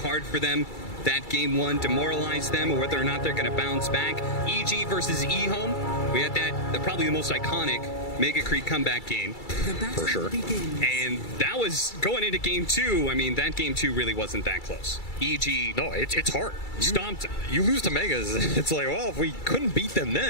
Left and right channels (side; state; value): right; late; 2.3 ms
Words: for them, that game 1 demoralized them, or whether or not they're going to bounce back. EG versus eHome, we had that probably the most iconic Mega Creep comeback game, for sure. And that was going into game 2. I mean, that game 2 really wasn't that close. EG, no, it's hard. Stomped them. You lose to Megas. It's like, well, if we couldn't beat them